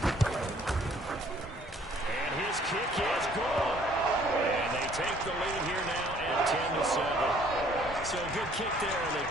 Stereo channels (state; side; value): normal; both; correlation 0.59